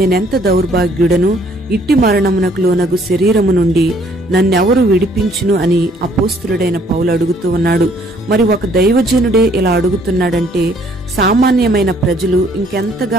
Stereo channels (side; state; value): both; normal; correlation 0.63